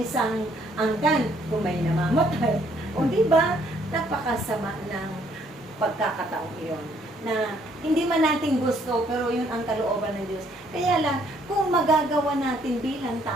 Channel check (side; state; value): both; normal; correlation 0.66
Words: angkan kung may namamatay. O diba? Napakasama ng pagkakataong iyon. Na hindi man natin gusto, pero yun ang kalooban ng Diyos. Kaya lang, kung magagawa natin bilang